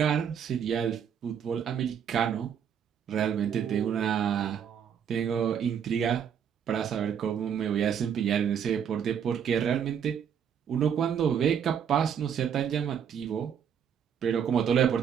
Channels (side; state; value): left; quieter; 8.1 dB